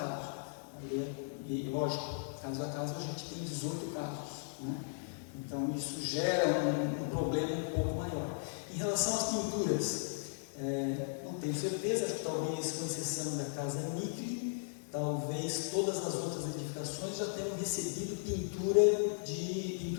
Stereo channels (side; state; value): right; silent; digital silence